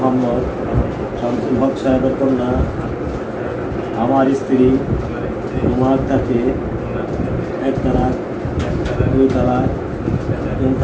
শামসুল হক সাহেবের কন্যা আমার স্ত্রী উমা আক্তারকে 1 তালাক 2 তালাক 3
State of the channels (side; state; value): both; identical; correlation 1.00